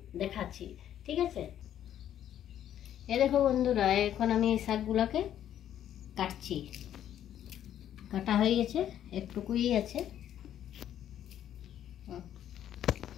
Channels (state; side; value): quieter; right; 10.8 dB